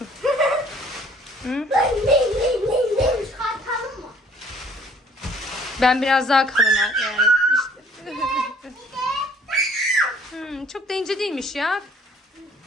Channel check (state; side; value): normal; both; correlation 0.57